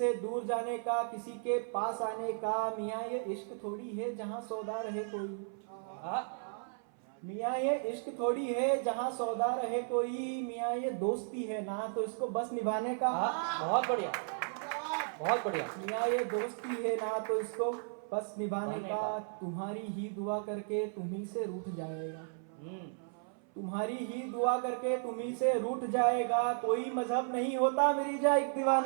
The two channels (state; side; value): silent; left; 55 dB below the other